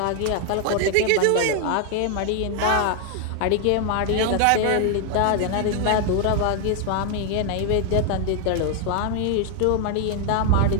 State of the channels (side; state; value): both; different; correlation 0.00